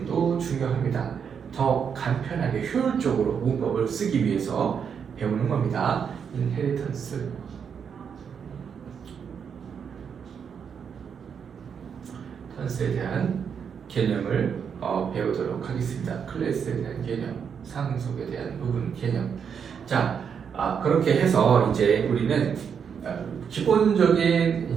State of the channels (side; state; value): left; quieter; 7.1 dB